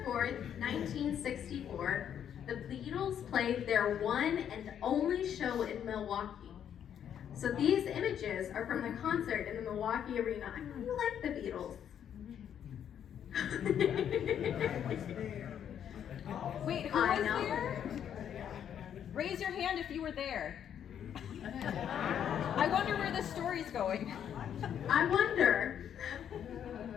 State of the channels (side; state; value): right; quieter; 9.2 dB